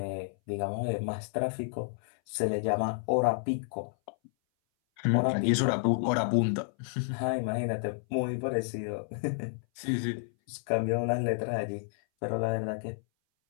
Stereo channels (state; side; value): silent; right; 57 dB below the other